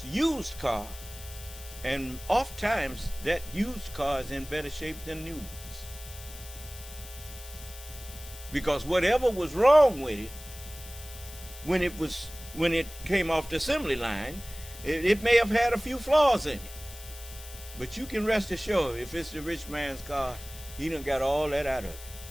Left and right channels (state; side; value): noise; left; hiss, 15 dB below the sound